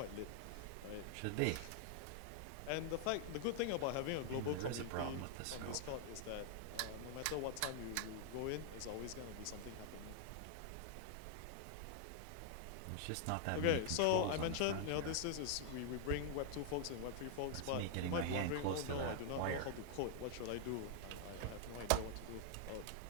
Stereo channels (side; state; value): both; different; correlation 0.00